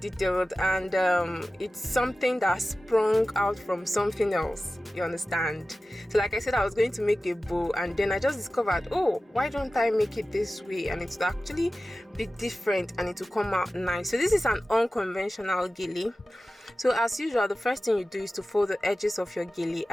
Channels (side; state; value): both; normal; correlation 0.95